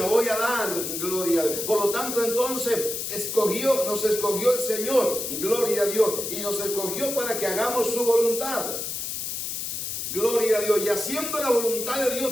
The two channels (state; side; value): noise; left; hiss, 4 dB below the sound